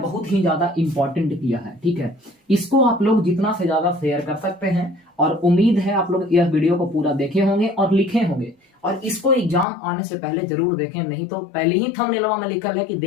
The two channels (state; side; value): drops out; right; at 9.7 s